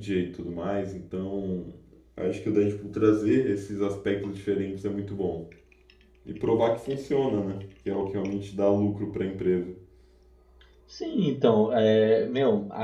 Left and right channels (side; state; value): both; identical; correlation 1.00